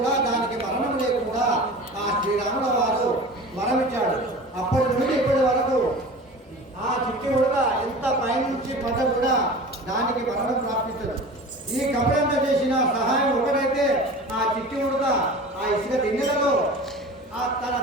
దానికి మరణం లేకుండా ఆ శ్రీరాముల వారు వరం ఇచ్చాడు. అప్పటి నుండి ఇప్పటి వరకు ఆ చిట్టి ఉడక ఎంత పైనుంచి పడ్డ కూడా దానికి మరణం ప్రాప్తించదు. ఈ కపడంతో చేసిన సహాయం ఒకటైతే ఆ చిట్టి ఉడక ఆ ఇసుక దిన్నెలలో ఆ తన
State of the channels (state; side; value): normal; both; correlation 0.37